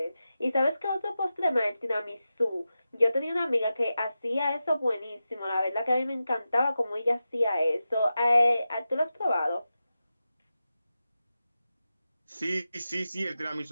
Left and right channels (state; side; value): inverted; both; correlation -0.92